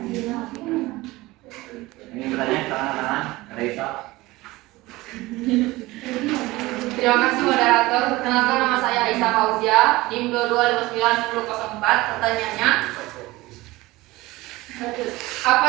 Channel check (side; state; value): left; quieter; 19.8 dB